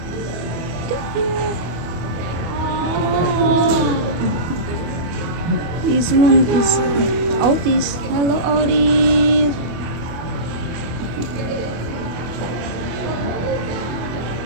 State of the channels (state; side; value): late; left; 24 ms